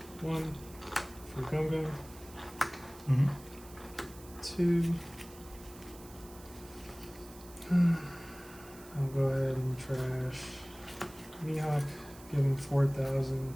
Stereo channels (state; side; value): noise; right; hiss, 20 dB below the sound